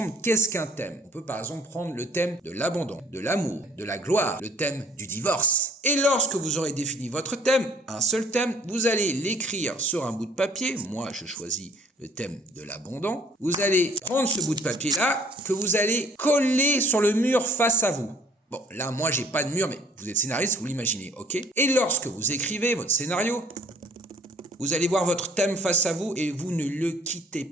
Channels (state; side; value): normal; both; correlation 0.56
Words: qu'est-ce qu'un thème. On peut par exemple prendre le thème de l'abandon, de l'amour, de la gloire, le thème du divorce. Et lorsque vous aurez défini votre thème, un seul thème, vous allez l'écrire sur un bout de papier. Moi, je choisis le thème de l'abandon. Vous allez prendre ce bout de papier-là que vous allez coller sur le mur face à vous. Bon, là, moi, j'ai pas de mur, mais vous êtes scénariste, vous l'imaginez, ok? Et lorsque vous écrivez votre scénario, vous allez voir votre thème face à vous et vous ne le quittez